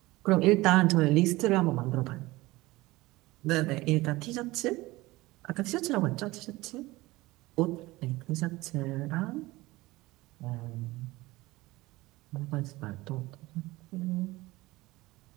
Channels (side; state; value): left; quieter; 19.9 dB